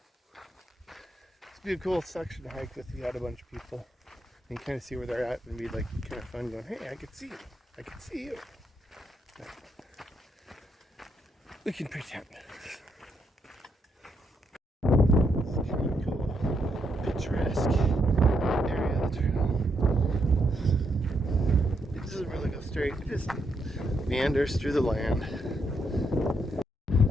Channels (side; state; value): both; normal; correlation 0.78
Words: would be a cool section to hike with. You had a bunch of people and kind of see where they're at, and be like kind of fun going, hey, I can see you. I can see you. But we can pretend. It's kind of cool, picturesque area of the trail. It doesn't really go straight. It just meanders through the land.